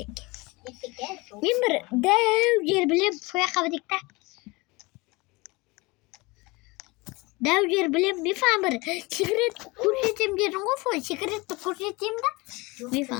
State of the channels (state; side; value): quieter; right; 24.6 dB